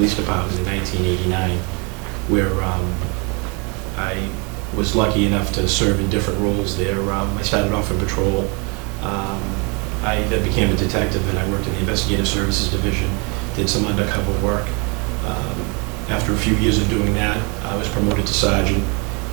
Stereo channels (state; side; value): quieter; left; 32.2 dB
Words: Department in 1989, where I was lucky enough to serve in different roles there. I started off in patrol, I then became a detective, and I worked in the investigative services division, did some undercover work. After a few years of doing that, I was promoted to sergeant,